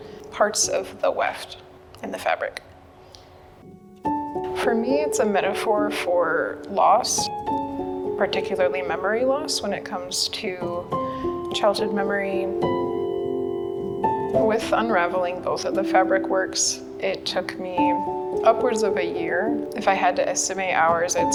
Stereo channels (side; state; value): both; identical; correlation 1.00